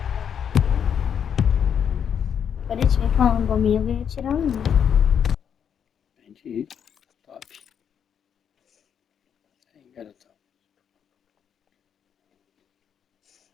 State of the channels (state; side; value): quieter; right; 8.0 dB